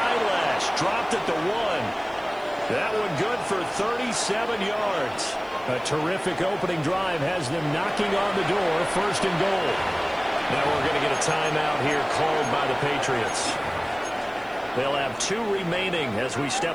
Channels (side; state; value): right; noise; hiss, 30 dB below the sound